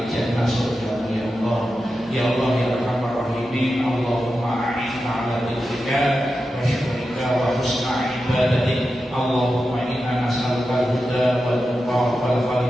surga ya Allah. Ya Allah ya Arhamar Rahimin. Allahumma a'inna ala dzikrika wa syukrika wa husna ibadatik. Allahumma inna nas'aluka al-huda wal tuqa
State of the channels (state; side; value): normal; both; correlation 0.91